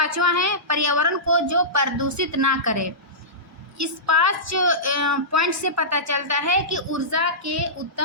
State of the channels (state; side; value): normal; both; correlation -0.18